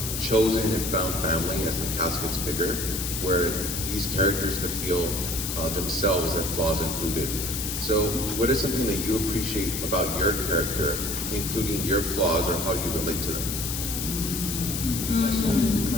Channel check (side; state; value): left; noise; hiss, 3 dB below the sound